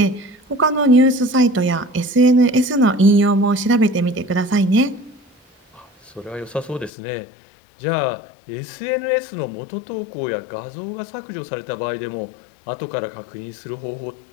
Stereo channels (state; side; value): drops out; right; at 6.9 s